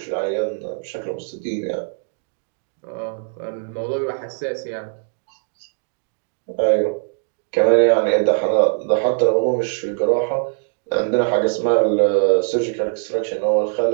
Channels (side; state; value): left; silent; digital silence